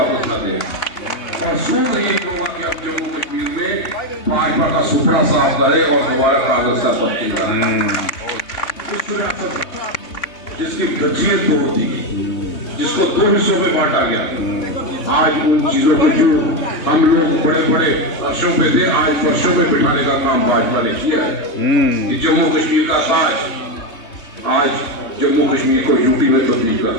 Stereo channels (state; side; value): late; right; 3.2 ms